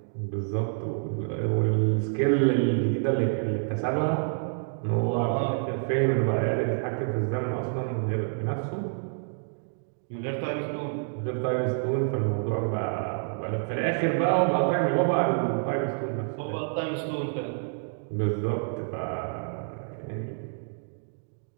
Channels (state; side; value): silent; left; digital silence